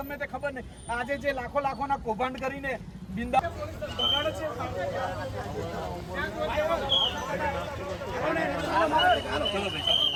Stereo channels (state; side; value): identical; both; correlation 1.00